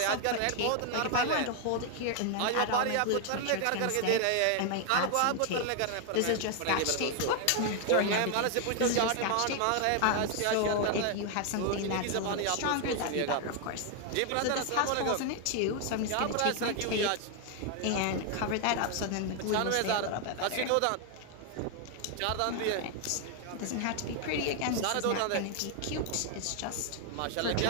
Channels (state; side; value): different; both; correlation 0.00